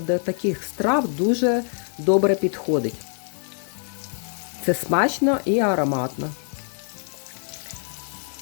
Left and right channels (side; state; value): right; silent; 61 dB below the other